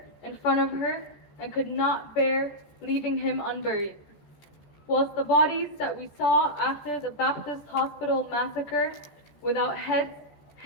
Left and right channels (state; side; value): late; right; 14 ms